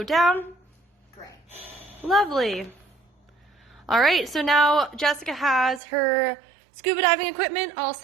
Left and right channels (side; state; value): left; drops out; at 5.8 s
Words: down? Gray. Lovely. All right, so now Jessica has her scuba diving equipment all